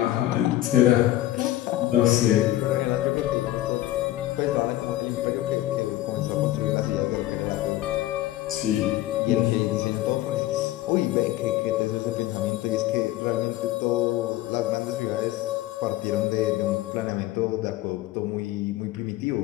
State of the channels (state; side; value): quieter; right; 15.1 dB